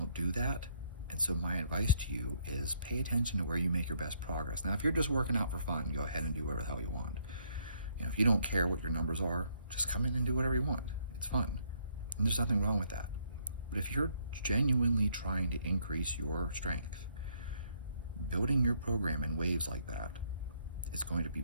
do that. And so my advice to you is pay attention to where you make your best progress. Now, if you're just working out for fun, go ahead and do whatever the hell you want. If you don't care what your numbers are, just come in and do whatever you want. It's fun. And there's nothing wrong with that. But if you're genuinely trying to increase your strength, building your program in waves like that is going to be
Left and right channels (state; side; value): inverted; both; correlation -0.68